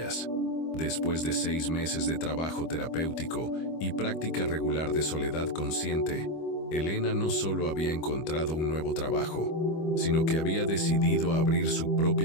Después de 6 meses de trabajo terapéutico y práctica regular de soledad consciente, Elena no solo había encontrado un nuevo trabajo, sino que había decidido abrir su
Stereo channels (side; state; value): right; late; 25 ms